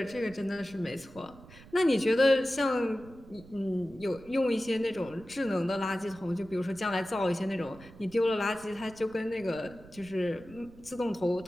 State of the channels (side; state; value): right; noise; rumble, 21 dB below the sound